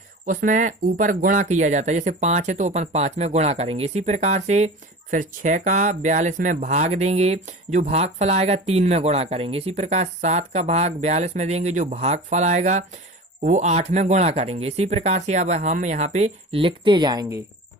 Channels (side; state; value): both; normal; correlation 0.34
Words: उसमें ऊपर गुणा किया जाता है। जैसे 5 है तो अपन 5 में गुणा करेंगे। इसी प्रकार से फिर 6 का 42 में भाग देंगे, जो भाग फल आएगा 3 में गुणा करेंगे। इसी प्रकार 7 का भाग 42 में देंगे, जो भाग फल आएगा वो 8 में गुणा करेंगे। इसी प्रकार से अब हम यहाँ पे लिखते जाएंगे।